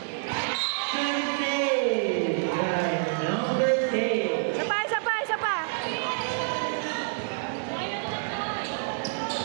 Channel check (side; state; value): left; silent; 55 dB below the other